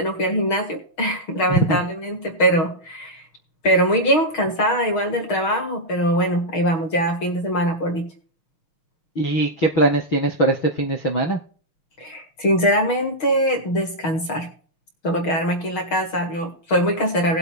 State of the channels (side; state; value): right; late; 6.4 ms